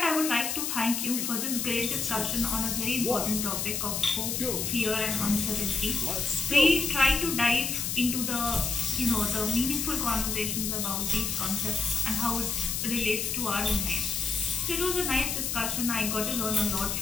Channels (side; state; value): left; noise; hiss, 1 dB below the sound